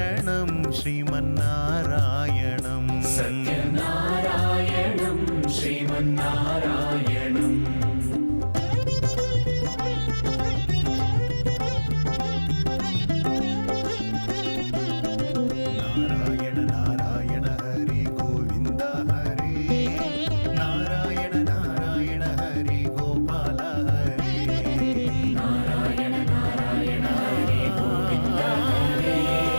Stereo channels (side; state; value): both; inverted; correlation -1.00